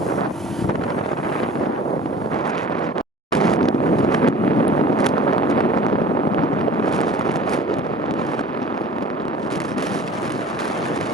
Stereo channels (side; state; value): both; normal; correlation 0.43